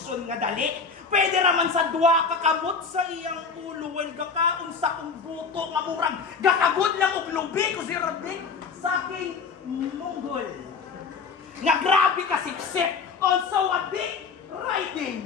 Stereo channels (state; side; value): quieter; right; 5.2 dB